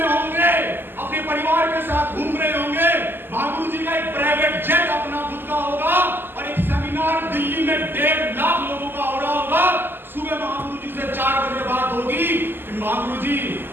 होंगे, अपने परिवार के साथ घूम रहे होंगे। महागुरु जी का एक प्राइवेट जेट अपना खुद का होगा और एक सेमिनार दिल्ली में 1.5 लाख लोगों का हो रहा होगा। सुबह महागुरु जी से 4 बजे बात होगी कि महागुरु जी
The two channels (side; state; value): left; late; 0.097 ms